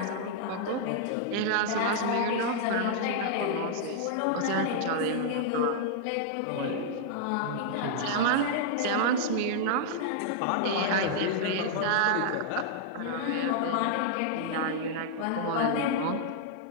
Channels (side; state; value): both; different; correlation -0.01